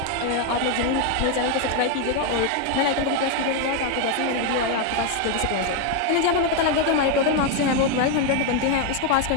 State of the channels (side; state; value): both; different; correlation 0.01